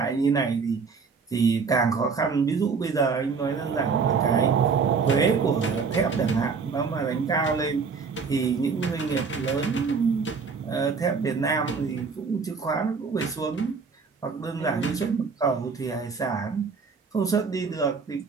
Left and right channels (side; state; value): left; quieter; 5.2 dB